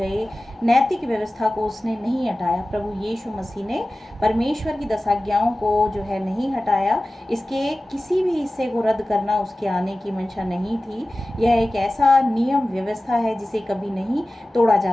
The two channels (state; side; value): normal; both; correlation 0.96